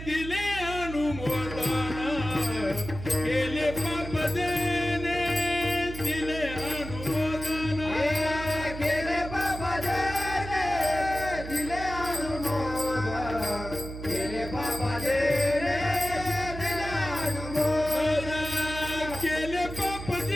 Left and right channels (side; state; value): right; noise; hum, 9 dB below the sound